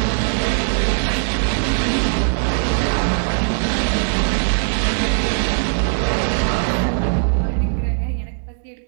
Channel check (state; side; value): silent; left; 66 dB below the other